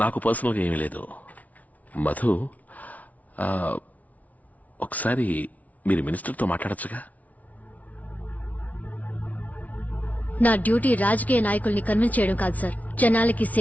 నాకు పర్సనల్గా ఏమీ లేదు. మధు, ఒకసారి మీరు మినిస్టర్తో మాట్లాడచ్చుగా? నా డ్యూటీ రాజకీయ నాయకుల్ని కన్విన్స్ చేయడం కాదు సార్, జనాలకి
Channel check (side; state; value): right; late; 0.071 ms